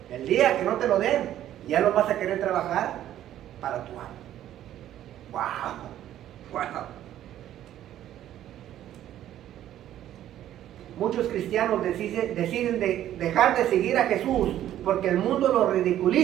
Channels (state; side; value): quieter; left; 12.1 dB